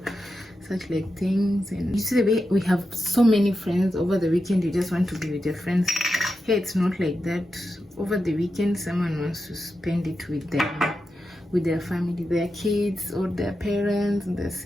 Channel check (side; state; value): both; normal; correlation 0.89